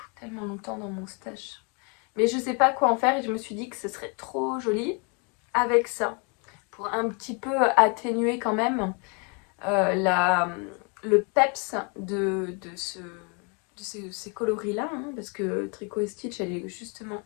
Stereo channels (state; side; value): quieter; right; 34.7 dB